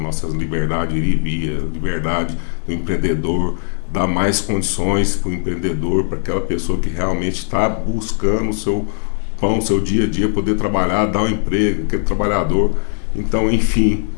liberdade de ir e vir, a liberdade do empreendedor, dar mais condições para o empreendedor, para aquela pessoa que realmente está buscando o seu pão, o seu dia a dia, poder trabalhar, dar um emprego, aquele trabalhador. Então, enfim,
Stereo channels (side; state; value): right; silent; digital silence